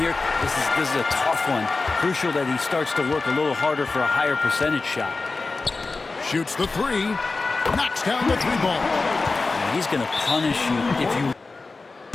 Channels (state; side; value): quieter; right; 3.8 dB